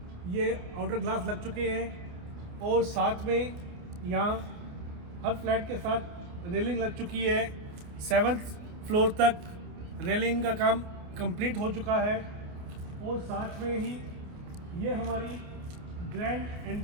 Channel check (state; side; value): late; left; 29 ms